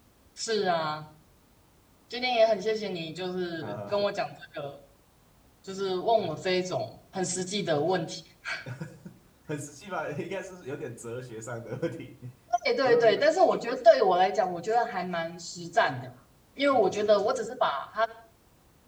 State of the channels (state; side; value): identical; both; correlation 1.00